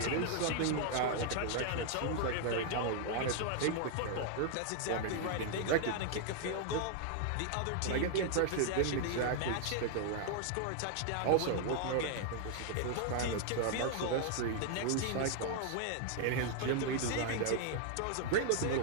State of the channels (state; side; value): different; both; correlation 0.00